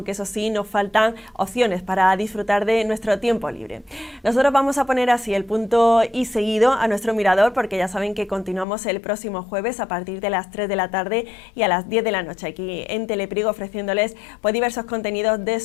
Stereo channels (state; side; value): drops out; right; at 8.7 s